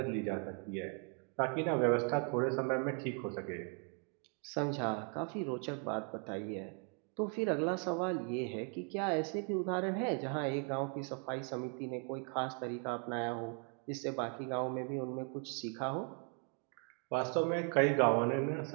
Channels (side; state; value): left; quieter; 37.2 dB